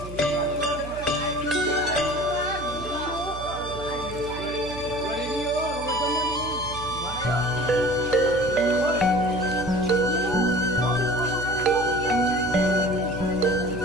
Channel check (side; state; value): right; noise; hum, 12 dB below the sound